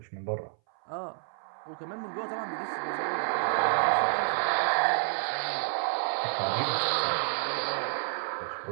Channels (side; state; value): left; silent; 58 dB below the other